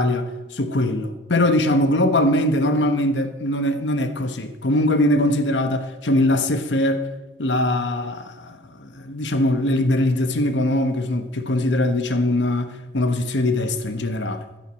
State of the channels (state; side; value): normal; both; correlation 0.47